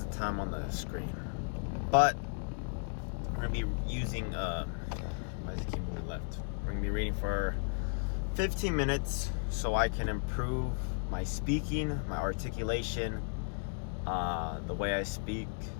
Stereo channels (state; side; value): silent; right; digital silence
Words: the time on the screen, but we're gonna be using why does it keep moving left? We're gonna be reading for 15 minutes so I can improve my speaking, my articulation, the way I speak,